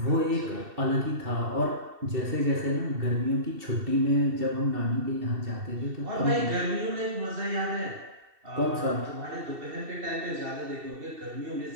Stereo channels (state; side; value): late; left; 2.7 ms